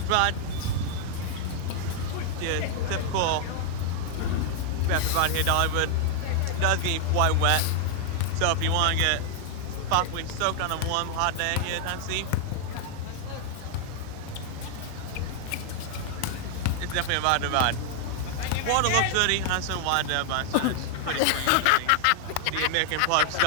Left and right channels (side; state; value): both; different; correlation 0.00